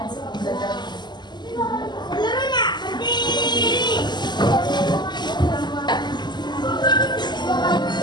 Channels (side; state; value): right; late; 0.21 ms